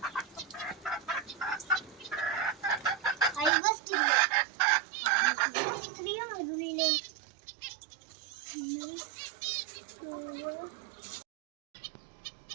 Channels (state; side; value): drops out; left; at 3.5 s